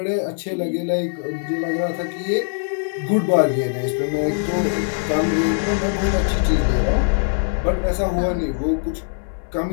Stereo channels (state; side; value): silent; right; digital silence